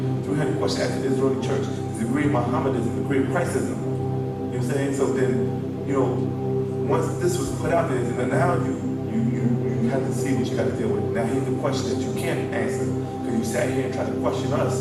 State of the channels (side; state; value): both; identical; correlation 1.00